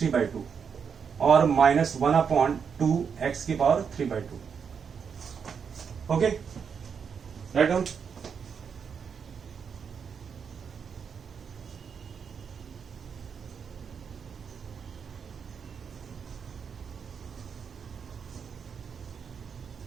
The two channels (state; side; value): quieter; left; 6.6 dB